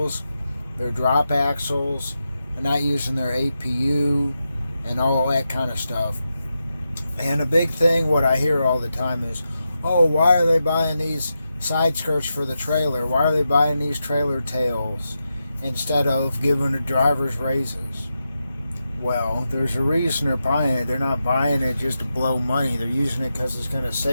their drop axles, and not using their APU and all that kind of stuff. And a big thing what I hear all the time is, oh, why are they buying these side skirts for the trailer? Why are they buying these trailer tails instead of giving the drivers raises? Well, there's a reason they're buying it. They're not buying it just to blow money. They're using it because it's going to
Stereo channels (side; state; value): both; inverted; correlation -0.88